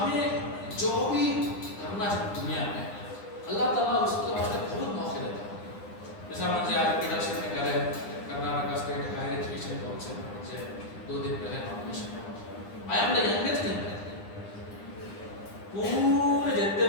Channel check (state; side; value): late; right; 9.9 ms